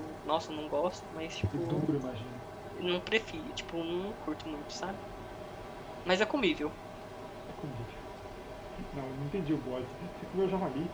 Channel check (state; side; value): identical; both; correlation 1.00